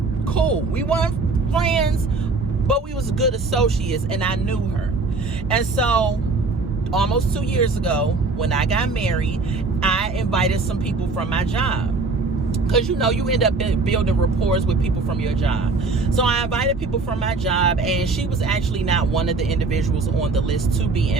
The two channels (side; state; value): left; quieter; 3.8 dB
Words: We weren't friends, but we was good associates, and I knew her. And so almost 2 years ago, when I got married, I invited some people from my job. Because, you know, you end up building rapport with people from your job. So I invited people from my job, and she was actually not one of the individuals on the list to be